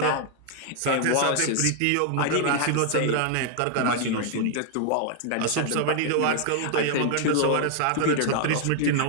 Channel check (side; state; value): both; different; correlation 0.00